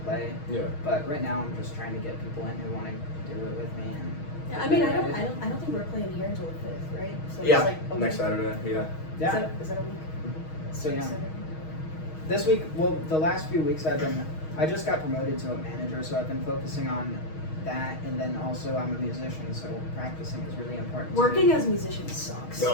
play. Yeah. But right now I'm just trying to get people in who want to do it with me. And Yeah, I mean, I don't think we're playing here until the 5th, right? So Yeah. It's like a Next week. Saturday. Yeah. Yeah. Is that a week? So yeah. Saturday? This week, well, the last few weeks I just got promoted to a manager, so I've been focusing on that, and then also I'm a musician, so practicing is really important. to Working me. as a musician sucks.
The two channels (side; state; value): right; late; 6.3 ms